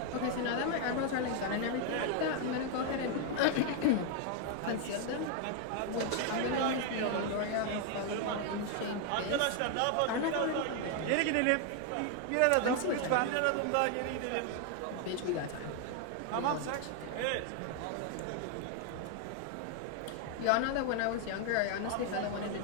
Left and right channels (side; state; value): both; different; correlation 0.00